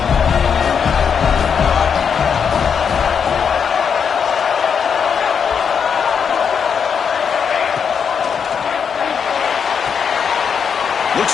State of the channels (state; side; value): quieter; right; 6.9 dB